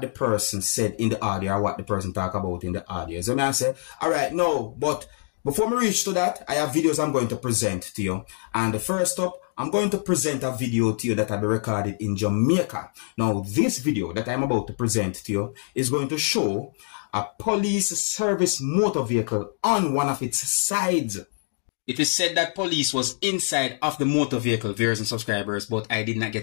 the person said in the audio or what the person talk about in the audio. So I say, alright, no, but before we reach to that, I have videos I'm going to present to you. And first up, I'm going to present a video to you that I recorded in Jamaica. Now, this video that I'm about to present to you is going to show a police service motor vehicle on one of its sides. It is said that police was inside of the motor vehicle, viewers and subscribers, but I did not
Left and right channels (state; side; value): silent; right; 62 dB below the other